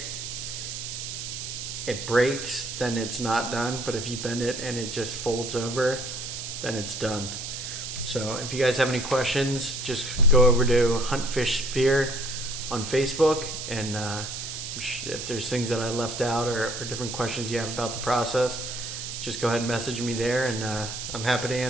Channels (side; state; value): right; noise; hiss, 6 dB below the sound